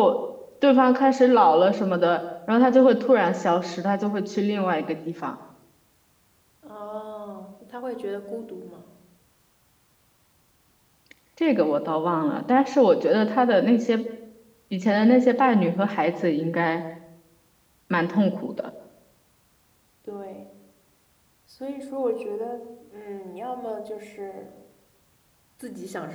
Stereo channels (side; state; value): both; identical; correlation 1.00